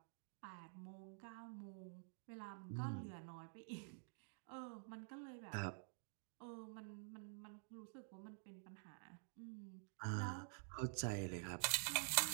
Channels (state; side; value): silent; left; digital silence